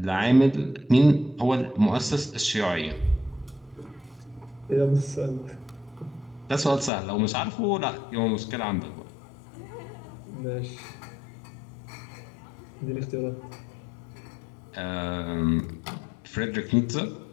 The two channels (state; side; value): drops out; right; at 6.9 s